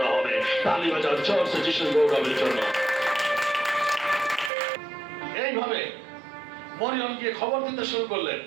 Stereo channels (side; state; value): left; drops out; at 4.5 s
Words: হবে। তালি বাজাও জোরসে যিশুর গৌরবের জন্য। এইভাবে মরিয়ম গিয়ে খবর দিতে শুরু করলেন,